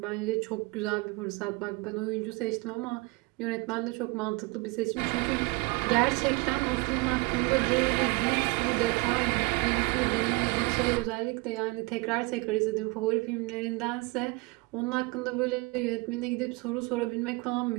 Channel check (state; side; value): quieter; left; 25.5 dB